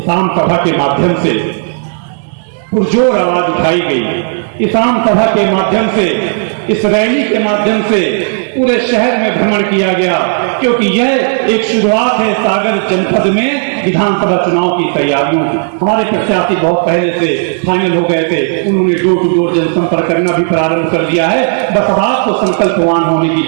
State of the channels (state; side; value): silent; left; 61 dB below the other